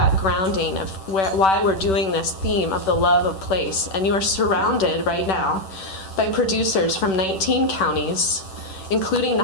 grounding of why we're doing this theme of the love of place. And you are surrounded right now by producers from 19 counties, including the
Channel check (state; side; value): late; right; 10 ms